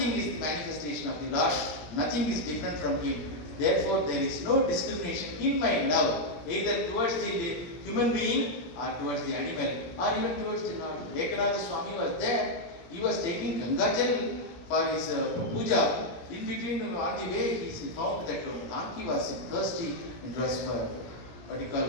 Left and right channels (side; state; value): right; late; 17 ms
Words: is the manifestation of the Lord. Nothing is different from Him. Therefore, there is no discrimination in my love, either towards the human being or towards the animal or even towards the Lord. Ekanath Swami was there. He was taking Gangajal for his puja. In between, on the way, he found that donkey was thirsty and was what you